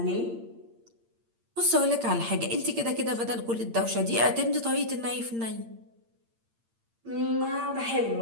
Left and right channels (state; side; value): late; left; 8.7 ms